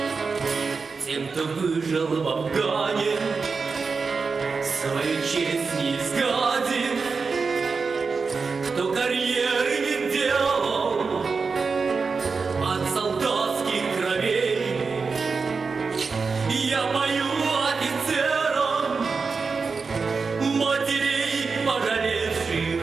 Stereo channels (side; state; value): left; quieter; 4.8 dB